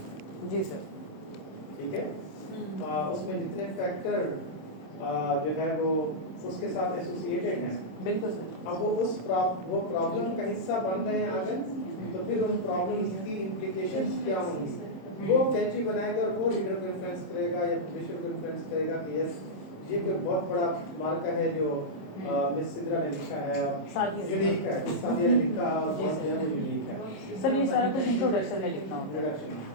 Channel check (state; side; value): late; right; 26 ms